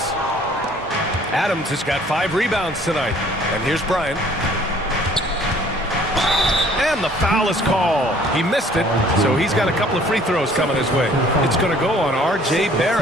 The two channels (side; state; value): both; normal; correlation 0.56